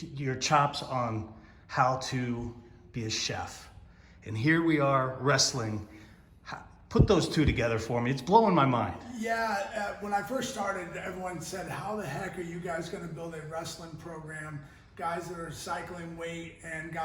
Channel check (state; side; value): identical; both; correlation 1.00